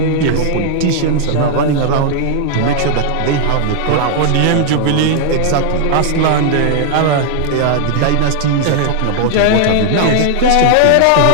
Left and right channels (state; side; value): different; both; correlation 0.00